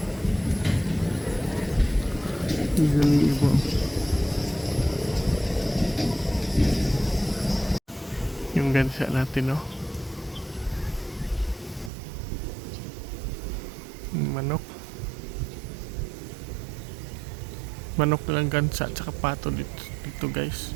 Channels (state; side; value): drops out; left; at 11.9 s